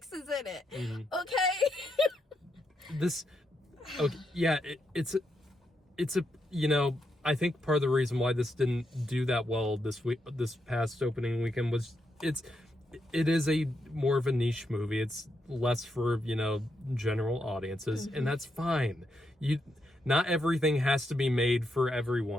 is in it. Okay? It's a, you know, I think part of the reason why this didn't do that well this past opening weekend was it is a more of a niche movie. It's less for, you know, general audiences, and that's fine. Not everything has to be made for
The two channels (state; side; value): normal; both; correlation 0.82